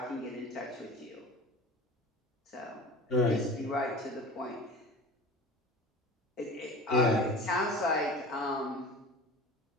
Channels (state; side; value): normal; both; correlation 0.38